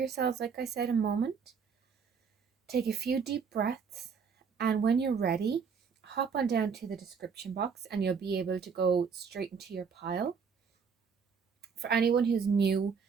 like I said, a moment. Take a few deep breaths, and when you're ready, hop on down to the description box and you'll be able to go straight into your pile. For anyone who's new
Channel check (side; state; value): left; quieter; 6.0 dB